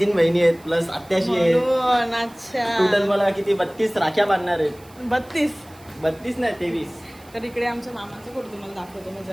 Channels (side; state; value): right; noise; hiss, 26 dB below the sound